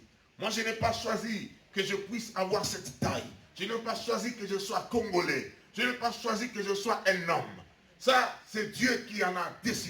Moi, je n'ai pas choisi que je puisse avoir cette taille. Je n'ai pas choisi que je sois congolais. Je n'ai pas choisi que je sois un homme. Ça, c'est Dieu qui en a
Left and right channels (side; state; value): both; identical; correlation 1.00